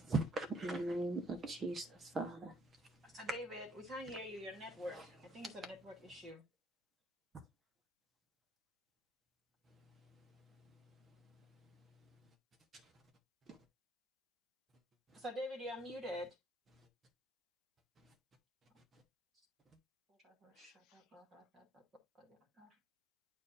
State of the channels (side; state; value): both; normal; correlation 0.66